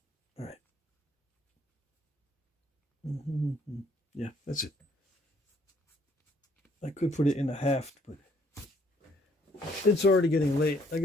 All right. Yeah, that's it. I could put it in a haft, but it's already getting late. I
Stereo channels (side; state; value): both; normal; correlation 0.64